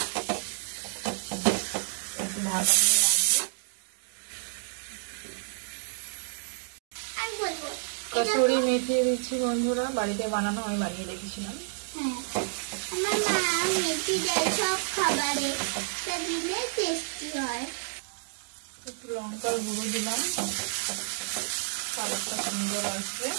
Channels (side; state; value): left; silent; digital silence